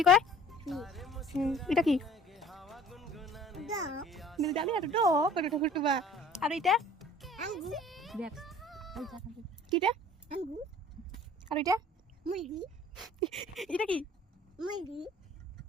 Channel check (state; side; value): normal; both; correlation 0.49